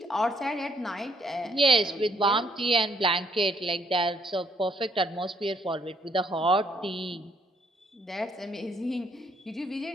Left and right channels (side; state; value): both; normal; correlation 0.68